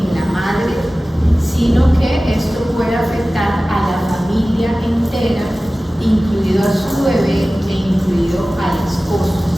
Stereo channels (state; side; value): normal; both; correlation 0.97